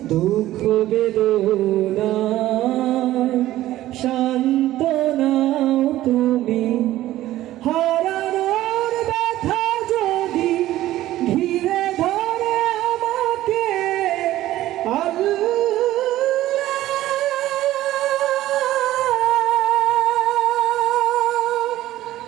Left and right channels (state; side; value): quieter; left; 14.8 dB